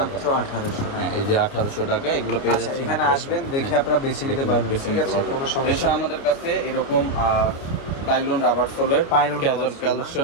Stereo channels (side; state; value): right; late; 29 ms